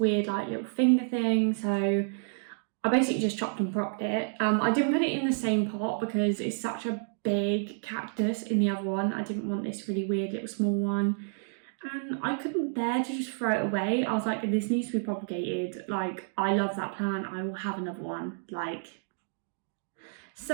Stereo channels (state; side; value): silent; left; digital silence